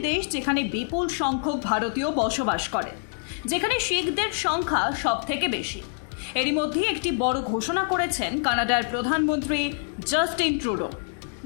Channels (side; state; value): right; silent; 61 dB below the other